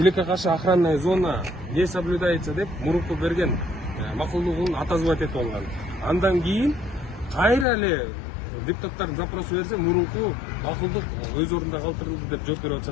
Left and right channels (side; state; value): right; drops out; at 7.7 s